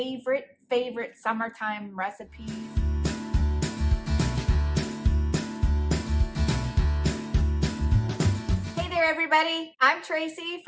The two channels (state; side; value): identical; both; correlation 1.00